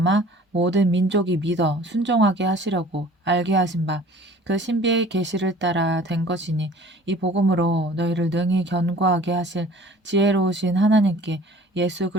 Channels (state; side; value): normal; both; correlation 0.48